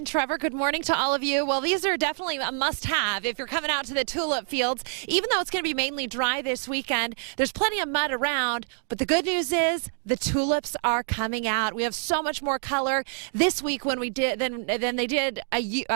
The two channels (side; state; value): left; silent; 60 dB below the other